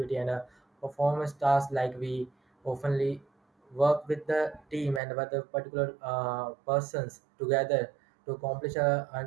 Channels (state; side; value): drops out; left; at 5.0 s